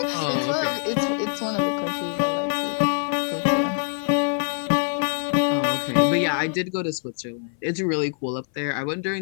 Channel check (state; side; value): silent; right; 59 dB below the other